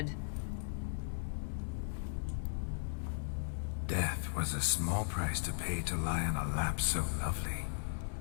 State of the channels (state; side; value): silent; right; digital silence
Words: Death was a small price to pay to lie on a lap so lovely,